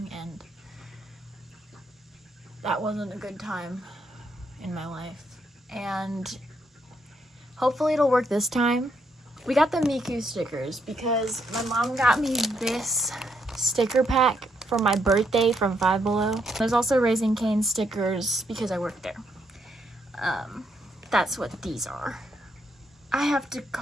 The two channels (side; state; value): both; normal; correlation 0.76